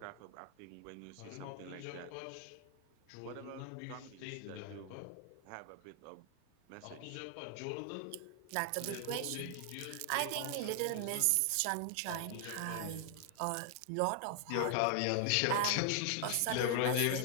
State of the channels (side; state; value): both; different; correlation 0.00